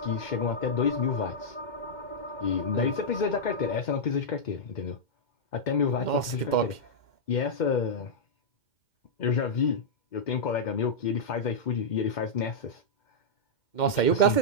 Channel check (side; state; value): right; late; 2.1 ms